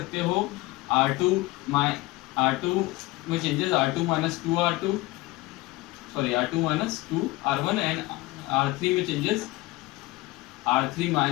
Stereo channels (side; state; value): right; quieter; 19.7 dB